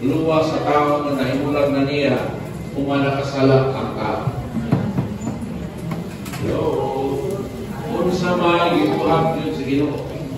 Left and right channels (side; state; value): both; identical; correlation 1.00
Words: sa tao na nahimulag na niya, kung manakasala ang tao. Kung sa may gibuha yun sa Ginoo,